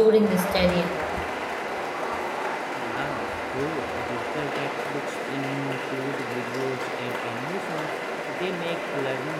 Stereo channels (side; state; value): both; identical; correlation 1.00